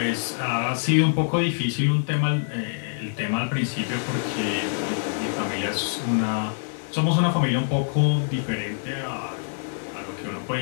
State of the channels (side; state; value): right; silent; digital silence